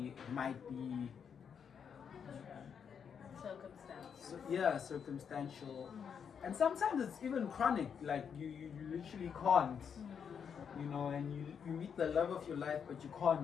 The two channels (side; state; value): right; quieter; 7.2 dB